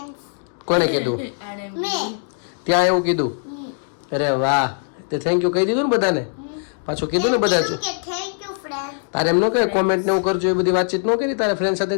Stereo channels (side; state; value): right; silent; digital silence